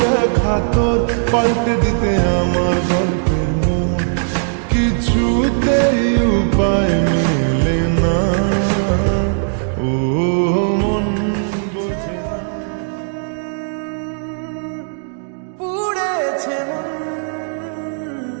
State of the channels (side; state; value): left; silent; digital silence